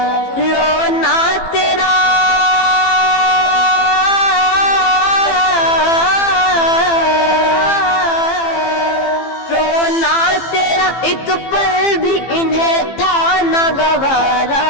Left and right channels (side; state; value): right; late; 15 ms